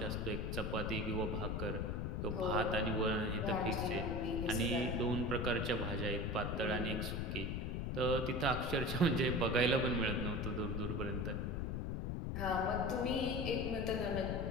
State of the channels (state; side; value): noise; left; rumble, 1 dB below the sound